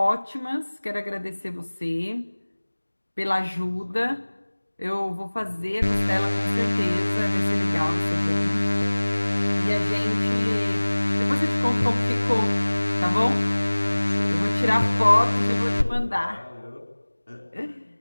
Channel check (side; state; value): both; inverted; correlation -1.00